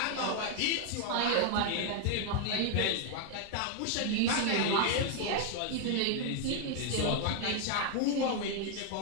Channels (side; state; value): both; different; correlation 0.00